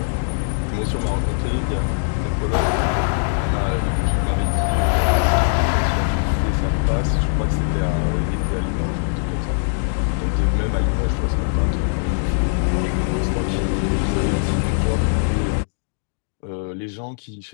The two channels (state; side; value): silent; right; digital silence